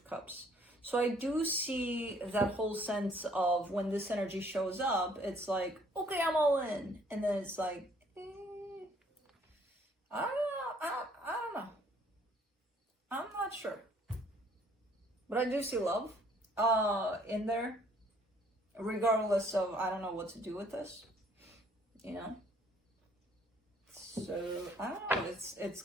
Cups. So I do see that whole sense of when this energy shows up, it's like, okay, I'm all in. And then it's like, I don't know. I'm not sure. But I do see love in there, regardless of, I don't know what to do with this, you know? So, I don't know, it's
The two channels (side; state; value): both; normal; correlation 0.61